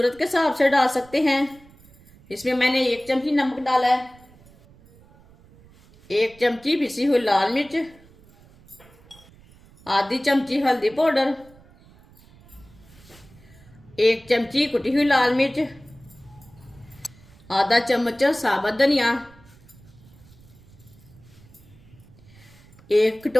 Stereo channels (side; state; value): right; noise; rumble, 25 dB below the sound